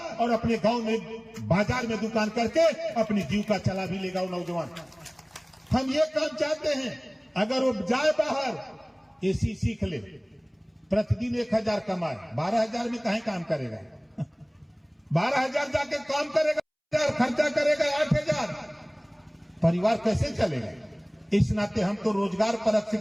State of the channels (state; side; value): identical; both; correlation 1.00